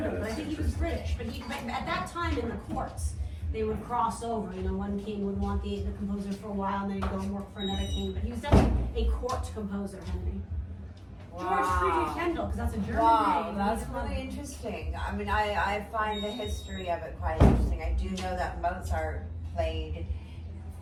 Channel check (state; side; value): identical; both; correlation 1.00